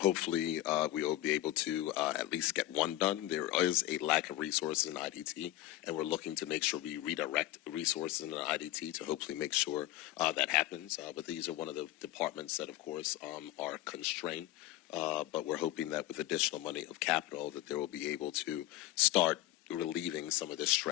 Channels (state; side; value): quieter; right; 15.4 dB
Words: we will be able to at least get 1 done. There is a lack of resources in IDT, and we're looking to make sure we redirect resources in IDT to hopefully make sure that happens. But these are one of the departments that, of course, are constrained. But we're hoping that with additional money of capital, that they will be able to start relieving some of the